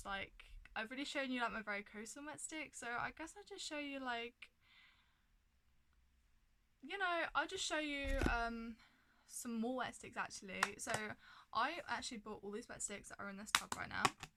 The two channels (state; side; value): identical; both; correlation 1.00